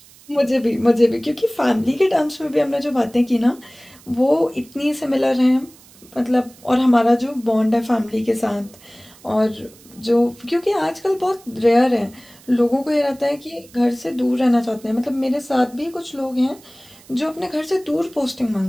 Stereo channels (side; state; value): right; noise; hiss, 25 dB below the sound